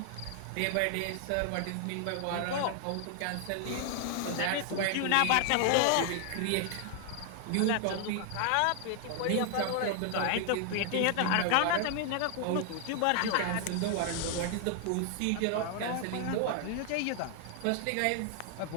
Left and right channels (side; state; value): both; different; correlation 0.00